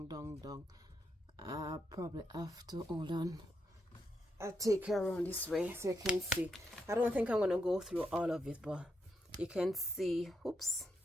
I probably have to hold on. I'll take her around this way so you can see. I don't think I'm gonna go through all of it, but you can see. Oops.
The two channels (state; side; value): normal; both; correlation 0.81